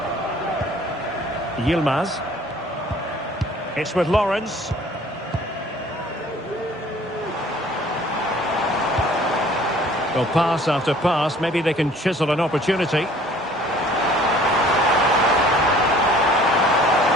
Yilmaz. It's with Lawrence. Well, pass after pass. Maybe they can chisel an opportunity.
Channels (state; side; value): normal; both; correlation 0.53